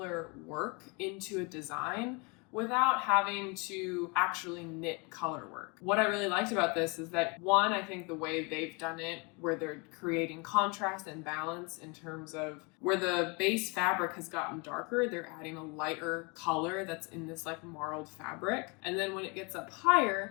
work into a design without having to actually knit color work. What I really liked about this is that one, I think the way they've done it, where they're creating contrast and balance in terms of where the base fabric has gotten darker, they're adding a lighter color that's in this like marled fabric. And then when it gets up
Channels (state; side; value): quieter; right; 30.7 dB